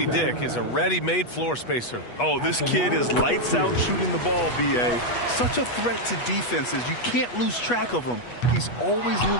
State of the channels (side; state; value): right; late; 8.3 ms